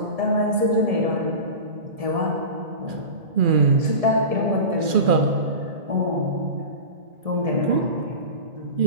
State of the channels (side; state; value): left; late; 2.4 ms